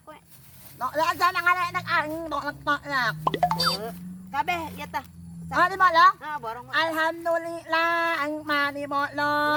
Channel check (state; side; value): identical; both; correlation 1.00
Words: kowe. Tok lah aja nang anak ang tok lah. Kabeh ya tah. Di bolong? Borong. Alhamdulillah, ang mani